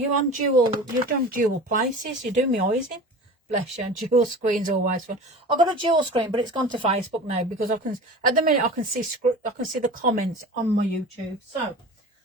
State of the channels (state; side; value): normal; both; correlation 0.36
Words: dual places. You do me eyes in. Bless you. Dual screen's always fun. I've got a dual screen, but it's gone to Facebook now, because I can, at the minute, I can see the comments on my YouTube. So